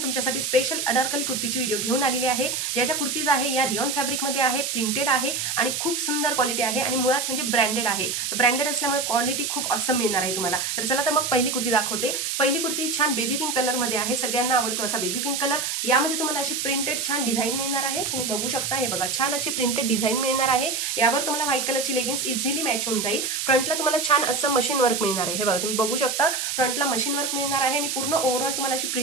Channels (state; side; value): noise; right; hiss, 2 dB below the sound